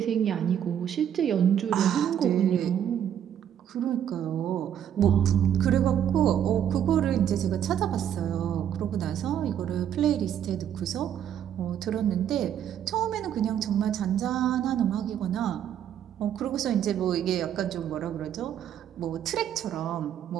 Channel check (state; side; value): quieter; left; 9.6 dB